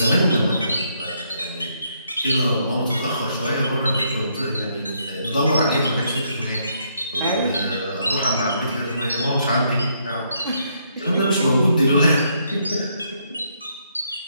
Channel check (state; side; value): inverted; both; correlation -0.73